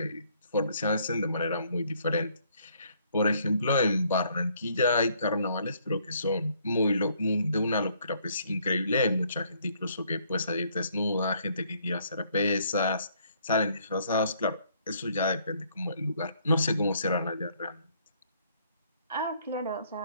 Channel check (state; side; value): inverted; both; correlation -0.66